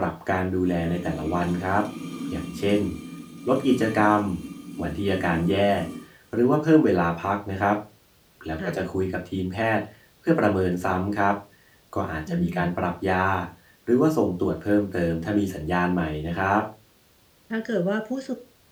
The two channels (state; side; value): identical; both; correlation 1.00